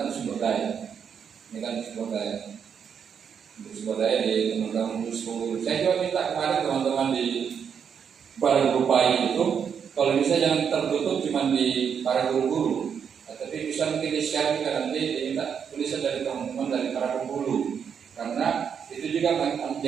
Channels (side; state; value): left; quieter; 7.3 dB